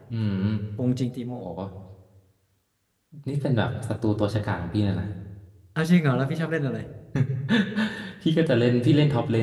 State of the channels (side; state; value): both; identical; correlation 1.00